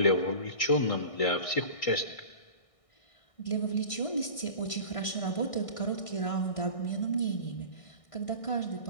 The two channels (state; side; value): late; right; 1.6 ms